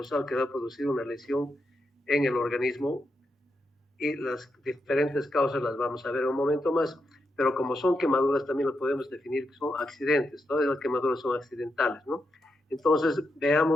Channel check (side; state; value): both; normal; correlation 0.84